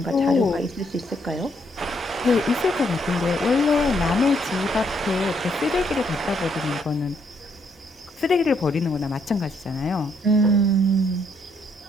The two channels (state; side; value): normal; both; correlation 0.72